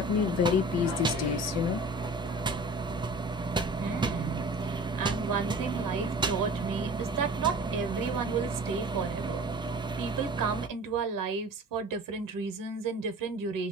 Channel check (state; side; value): normal; both; correlation 0.42